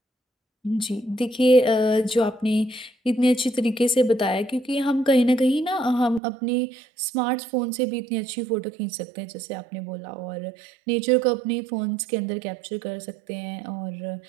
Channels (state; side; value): drops out; left; at 6.2 s